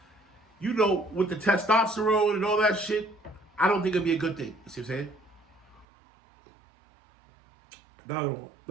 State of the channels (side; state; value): left; drops out; at 5.9 s